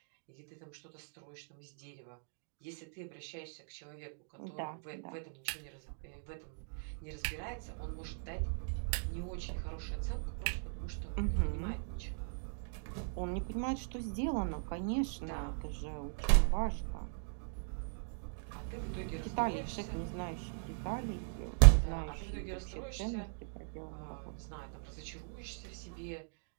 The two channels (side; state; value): left; silent; digital silence